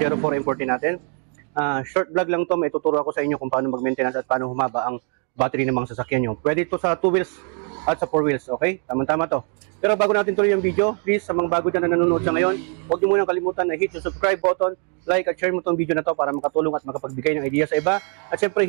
440 natin. Short vlog lang to. May tuturo ako sa inyo kung paano mag-maintenance at paano humaba ang battery ng mga sasakyan nyo. Pwede ito sa 2 wheels at sa 4 wheels. Okay? Tama-tama to. Pero bago natin tuloy yung video, please, sa mga bago dyan na nanonood sa ngayon, huwag nyo munang kalimutan na hit yung subscribe button, like at share mo itong video na to para makatulong at makapagbigay ng idea sa iba. At syempre,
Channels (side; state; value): left; quieter; 39.4 dB